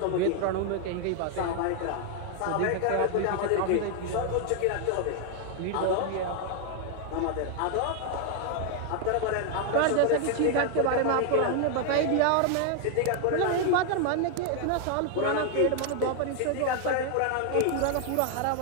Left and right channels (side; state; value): both; different; correlation 0.00